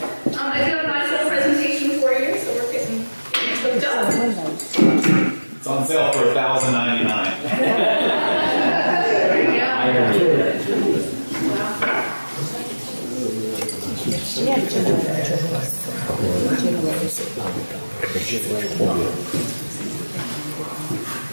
I do have a nice little presentation for you, so we're getting hooked up. It's on sale for $1,099. Yes,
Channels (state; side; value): inverted; both; correlation -1.00